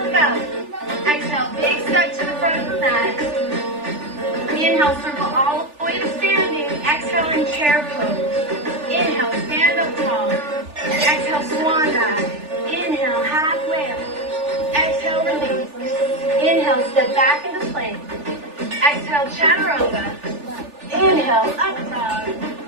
up. Exhale, big step to the front of the mat. Inhale, circle all the way to standing. Exhale, in chair pose. Inhale, stand up tall. Exhale, swan dive. Inhale, halfway up. Exhale, release. Inhale, step back into plank. Exhale, chaturanga. Inhale, up dog.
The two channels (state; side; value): late; left; 3.4 ms